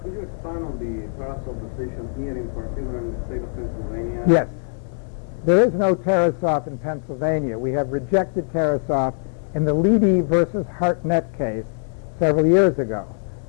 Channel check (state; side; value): silent; right; digital silence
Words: Could you expand on the Tarasoff decision here in particular in the state of Pennsylvania? Yes. There is no Tarasoff in Pennsylvania. We have rejected Tarasoff in the Leedy versus Hartnett case several years ago.